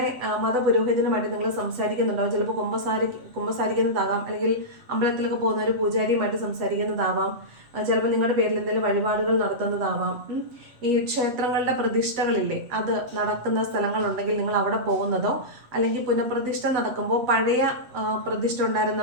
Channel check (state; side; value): late; left; 7.7 ms